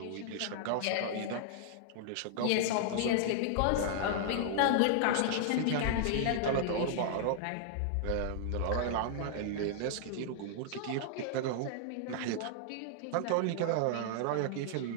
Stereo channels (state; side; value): different; both; correlation -0.01